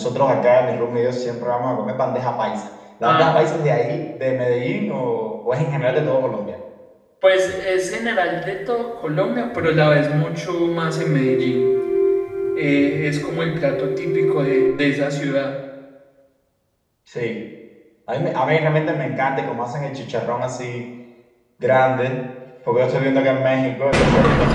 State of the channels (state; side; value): identical; both; correlation 1.00